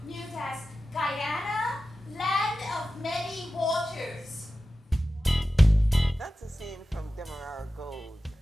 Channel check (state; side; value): normal; both; correlation 0.94